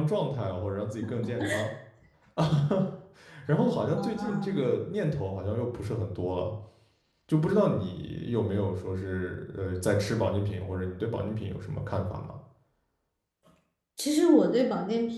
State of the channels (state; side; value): identical; both; correlation 1.00